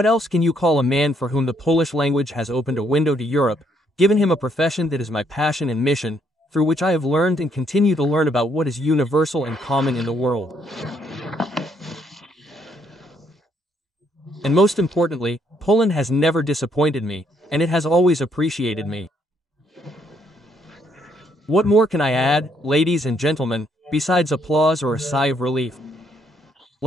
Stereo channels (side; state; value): both; normal; correlation 0.71